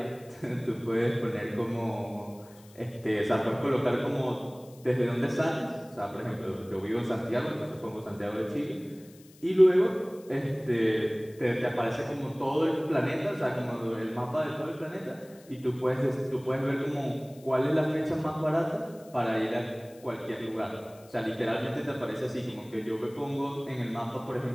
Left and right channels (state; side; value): noise; left; hiss, 25 dB below the sound